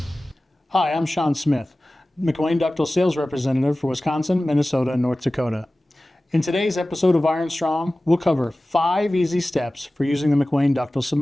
Hi, I'm Shawn Smith, McWane Ductile Sales Representative for Wisconsin, Minnesota, and North Dakota. In today's episode of Iron Strong, we'll cover 5 easy steps for using the McWane Ductile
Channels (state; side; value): normal; both; correlation 0.97